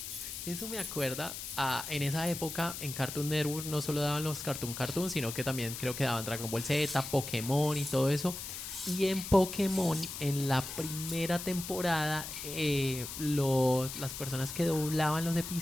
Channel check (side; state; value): left; noise; hiss, 8 dB below the sound